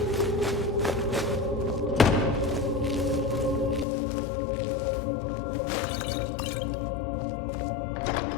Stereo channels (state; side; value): drops out; right; at 3.9 s